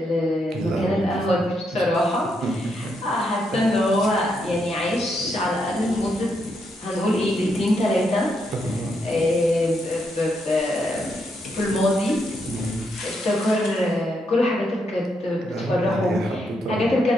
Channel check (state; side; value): normal; both; correlation 0.79